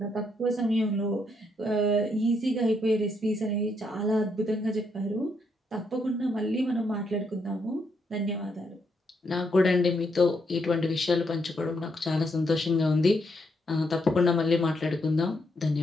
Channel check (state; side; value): normal; both; correlation 0.77